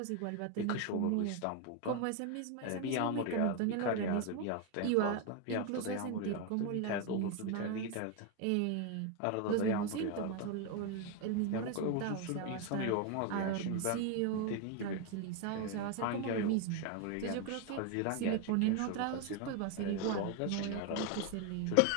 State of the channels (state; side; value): different; both; correlation 0.01